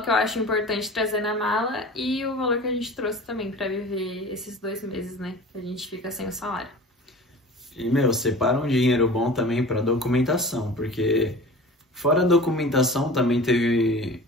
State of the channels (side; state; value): both; normal; correlation 0.39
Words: que eu acho importante trazer na mala e o valor que a gente trouxe também pra viver esses 2 meses, né? Que a gente fica sem o salário. E, separa um dinheiro bom também pra documentação, porque fora a documentação também teve...